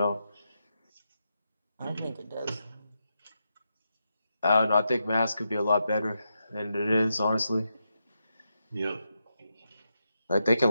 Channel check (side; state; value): both; inverted; correlation -0.86